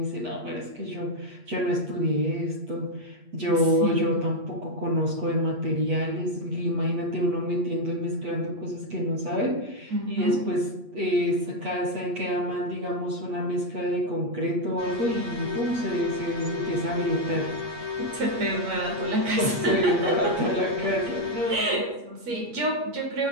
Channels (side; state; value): left; late; 8.5 ms